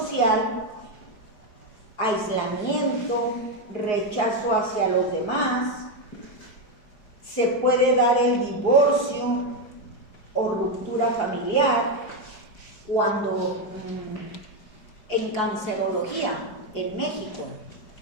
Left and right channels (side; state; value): right; late; 4.8 ms